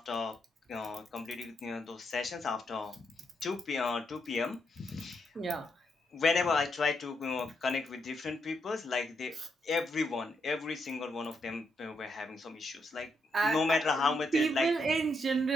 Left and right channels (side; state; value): both; normal; correlation 0.79